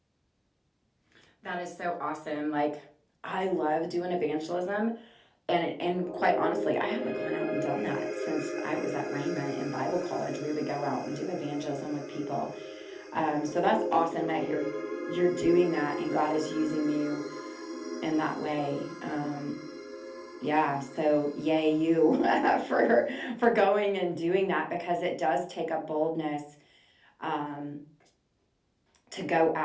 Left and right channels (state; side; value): identical; both; correlation 1.00